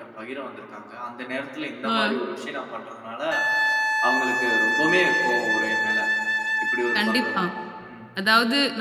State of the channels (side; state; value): both; identical; correlation 1.00